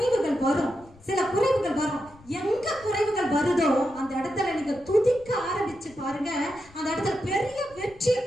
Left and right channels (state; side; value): noise; left; rumble, 25 dB below the sound